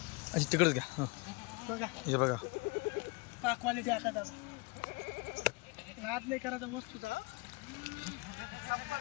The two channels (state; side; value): quieter; right; 27.4 dB